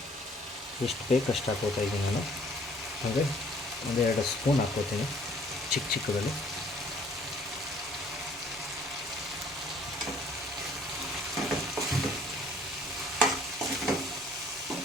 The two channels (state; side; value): normal; both; correlation 0.58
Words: ಎಷ್ಟು ಬೇಕು ಅಷ್ಟು ಹಾಕೋತಾ ಇದ್ದೀನಿ ನಾನು. ಅಂದರೆ 1-2 ಸ್ಪೂನ್ ಹಾಕ್ಕೋತೀನಿ ಚಿಕ್ಕದಲ್ಲಿ.